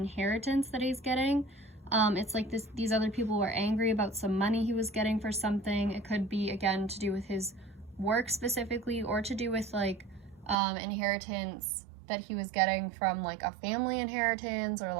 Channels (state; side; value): drops out; left; at 10.6 s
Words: that he's getting. It's like these other people were angry about some money he was getting for something. It could be, again, to do with his work specifically, or to do with, like, inheritance that he was getting from, like, a family inheritance, or,